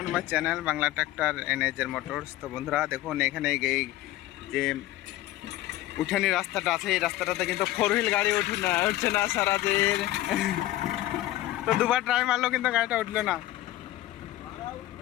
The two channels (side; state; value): right; quieter; 15.6 dB